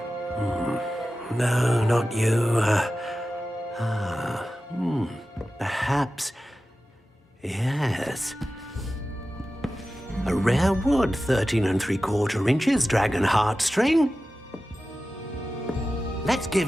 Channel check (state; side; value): normal; both; correlation 0.94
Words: No, not you. Perhaps. Yes. A rare wood, 13 3/4 inches, dragon heartstring. Let's